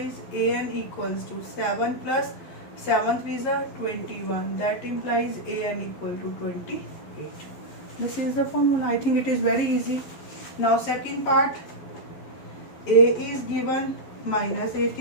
AN equals to 7 plus 7 is 21. That implies AN equal to 28. This is the formula. I think it is very easy. Now second part, A is given minus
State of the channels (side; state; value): right; late; 11 ms